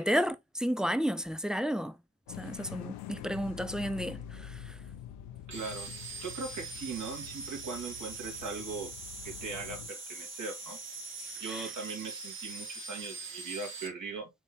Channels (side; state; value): both; normal; correlation 0.66